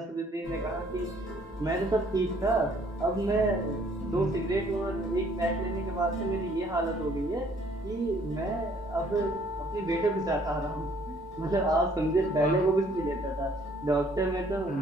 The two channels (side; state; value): both; normal; correlation 0.61